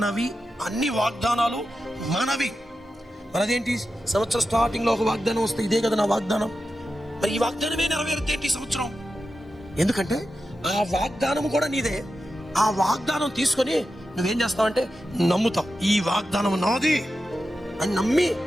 అన్ని వాగ్దానాలు మనవి. మనదేంటి? సంవత్సరం స్టార్టింగ్లో ఒక వాగ్దానం వస్తే ఇదే కదా నా వాగ్దానం. మరి ఈ వాగ్దానమే నెరవేరుతేంటి సంవత్సరం? ఎందుకంటే ఆ వాగ్దానం కూడా నీదే. ఆ వాగ్దానం తీసుకొని నువ్వేం చేస్తావంటే నమ్ముతావు. ఈ వాగ్దానం నాది అని నమ్మి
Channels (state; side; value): normal; both; correlation 0.91